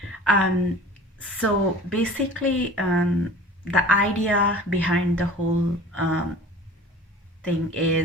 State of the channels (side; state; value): both; normal; correlation 0.41